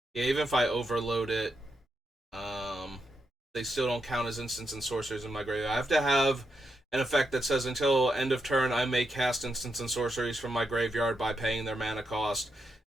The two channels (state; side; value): normal; both; correlation 0.83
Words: Yeah, even if I overload it, they still don't count as instants and sorceries in my graveyard. I have to have an effect that says until end of turn, I may cast instants and sorceries from my graveyard by paying their mana cost.